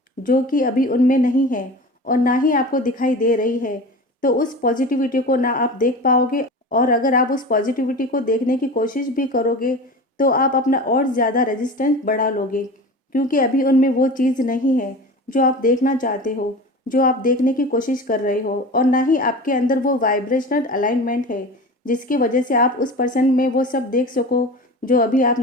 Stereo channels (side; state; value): both; normal; correlation 0.33